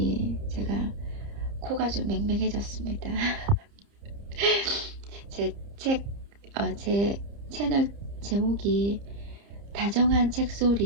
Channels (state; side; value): late; left; 30 ms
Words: 제가 코가 좀 맹맹해졌습니다. 제 채널 제목이 다정한